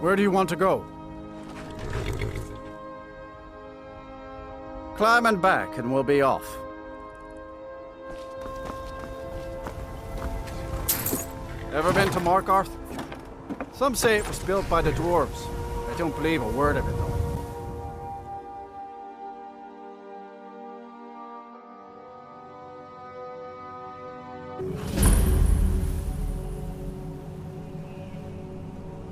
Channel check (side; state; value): both; identical; correlation 1.00